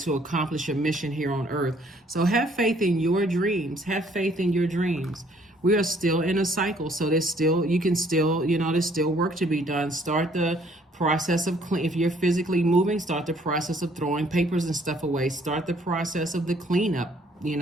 accomplish a mission here on earth. So have faith in your dreams. Have faith in your dreams. We are still in a cycle. So there's still work to be done. Start the process of if you're physically moving, start the process of throwing papers and stuff away. Start the process of the cleanup.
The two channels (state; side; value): normal; both; correlation 0.62